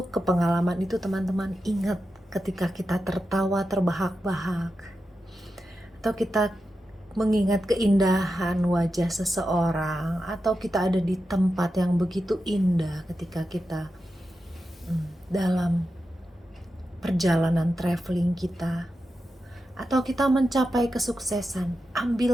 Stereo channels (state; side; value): normal; both; correlation 0.90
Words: ke pengalaman itu, teman-teman ingat ketika kita tertawa terbahak-bahak, atau kita mengingat keindahan wajah seseorang, atau kita ada di tempat yang begitu indah ketika kita dalam perjalanan traveling kita, atau kita mencapai kesuksesan.